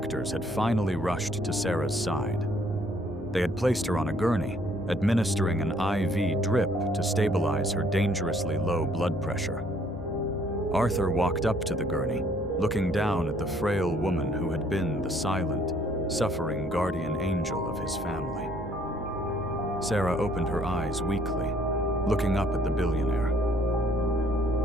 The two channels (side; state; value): both; normal; correlation 0.63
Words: had finally rushed to Sarah's side. They had placed her on a gurney, administering an IV drip to stabilize her dangerously low blood pressure. Arthur walked up to the gurney, looking down at the frail woman who had been the silent, suffering guardian angel of his family. Sarah opened her eyes weakly, looking up at the billionaire.